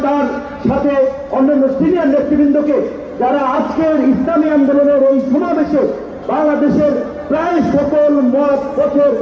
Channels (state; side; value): identical; both; correlation 1.00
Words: তার সাথে অন্যান্য সিনিয়র নেতৃবৃন্দকে, যারা আজকের ইসলামী আন্দোলনের এই সমাবেশে বাংলাদেশের প্রায় সকল মত পথের